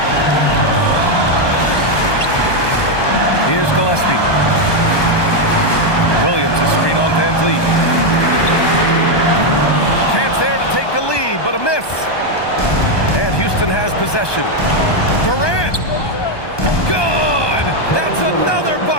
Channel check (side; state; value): right; late; 1.2 ms